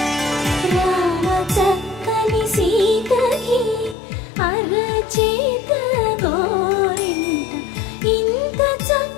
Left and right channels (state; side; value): drops out; right; at 4.0 s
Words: ರಾಮ ಚಕ್ಕನಿ ಸೀತಗೆ ಅರచేత గోరింట ఇంత